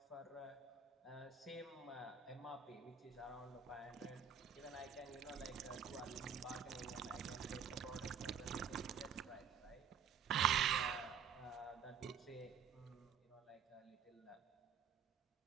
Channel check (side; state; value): left; quieter; 7.2 dB